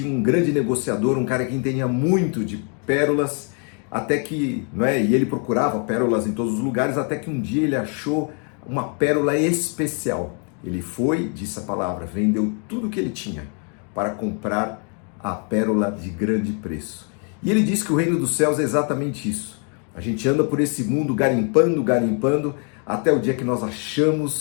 um grande negociador, um cara que entendia muito de pérolas, até que, e ele procurava pérolas em todos os lugares, até que um dia ele achou uma pérola especial. Ele foi, disse a palavra, vendeu tudo que ele tinha para comprar a pérola de grande preço. E ele diz que o reino dos céus é exatamente isso. A gente anda por esse mundo garimpando, até o dia que nós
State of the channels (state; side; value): quieter; right; 39.8 dB